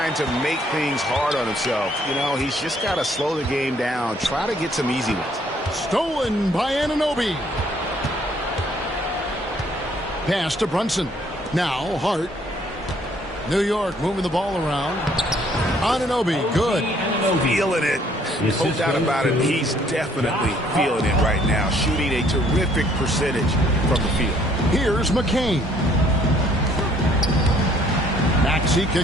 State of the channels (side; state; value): both; normal; correlation 0.63